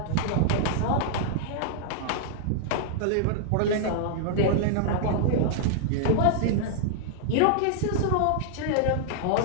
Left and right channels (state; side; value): different; both; correlation -0.01